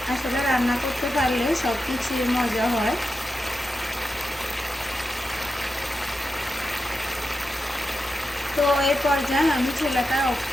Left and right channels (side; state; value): both; normal; correlation 0.89